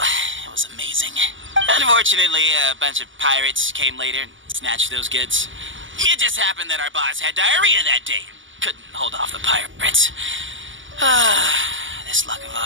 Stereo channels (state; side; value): late; left; 0.56 ms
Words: it was amazing. Unfortunately, a bunch of pirates came later and snatched those goods. It just happened that our boss had diarrhea that day. Couldn't hold off the pirates. This luck of